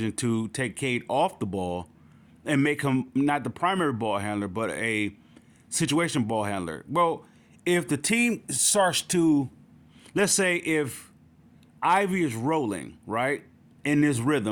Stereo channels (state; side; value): identical; both; correlation 1.00